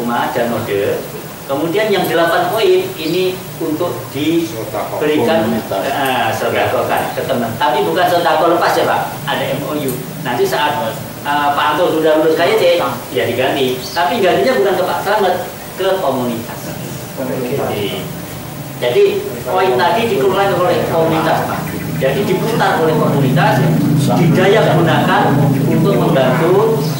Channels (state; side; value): identical; both; correlation 1.00